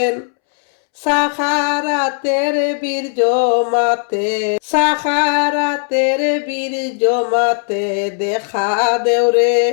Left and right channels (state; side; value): silent; right; 69 dB below the other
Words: সাখারাতের বীর জমাতে, সাখারাতের বীর জমাতে দেখা দেওরে